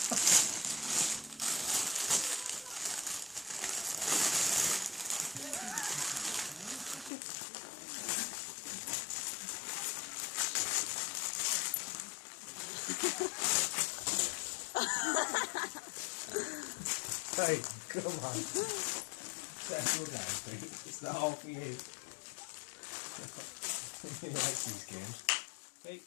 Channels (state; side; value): drops out; right; at 7.1 s